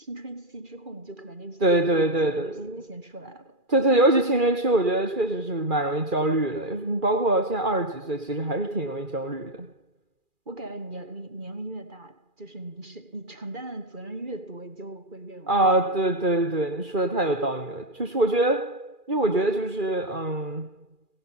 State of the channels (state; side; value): late; left; 2.4 ms